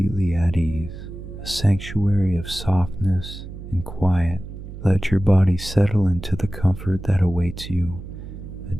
at ease, a sanctuary of softness and quiet. Let your body settle into the comfort that awaits you,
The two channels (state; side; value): noise; right; hum, 12 dB below the sound